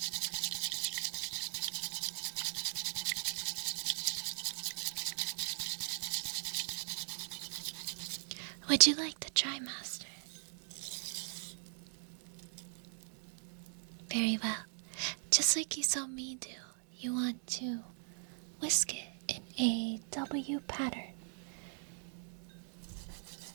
Would you like to try, Master? Very well. Just like you saw me do, you want to whisk it in a W pattern.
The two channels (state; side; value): silent; left; 51 dB below the other